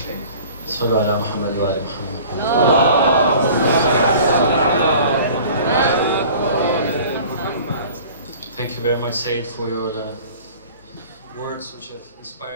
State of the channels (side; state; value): both; inverted; correlation -0.45